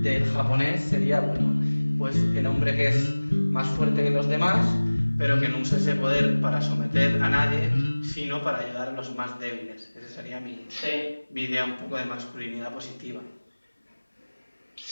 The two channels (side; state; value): both; inverted; correlation -1.00